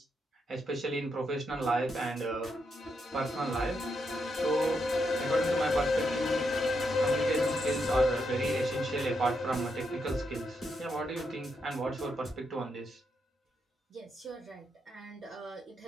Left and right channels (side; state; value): both; normal; correlation 0.81